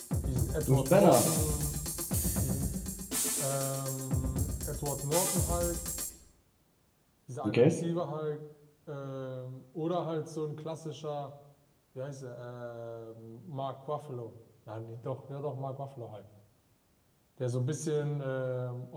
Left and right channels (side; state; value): both; identical; correlation 1.00